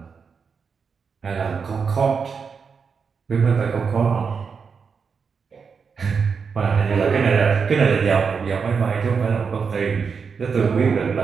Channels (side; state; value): left; quieter; 5.7 dB